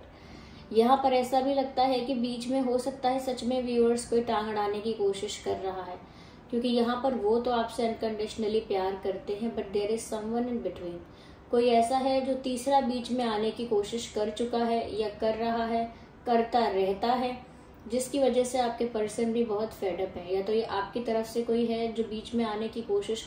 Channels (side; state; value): both; identical; correlation 1.00